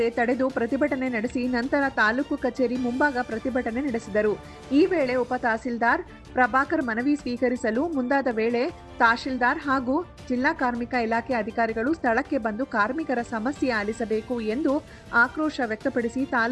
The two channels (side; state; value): both; identical; correlation 1.00